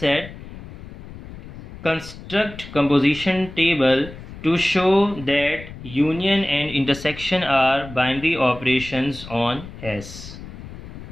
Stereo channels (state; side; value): noise; left; rumble, 14 dB below the sound